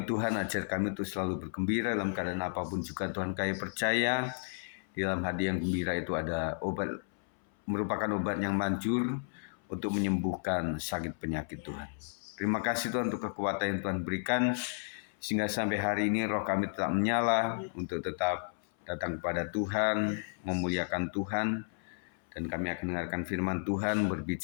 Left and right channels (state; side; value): silent; right; 56 dB below the other